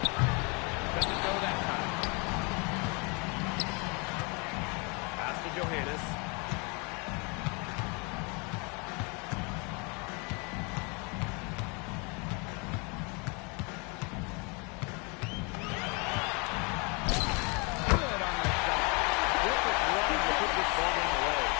Johannes. Good on the shot. Perfect run to put this ball in the way.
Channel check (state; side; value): quieter; right; 31.4 dB